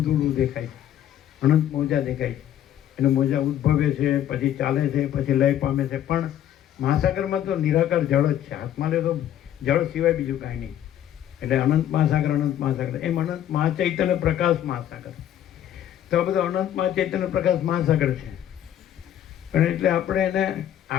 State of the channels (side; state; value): right; quieter; 11.1 dB